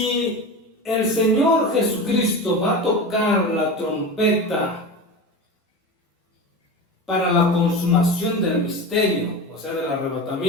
el Señor Jesucristo va a tocar la trompeta para la consumación del misterio, o sea, del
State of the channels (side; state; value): both; normal; correlation 0.27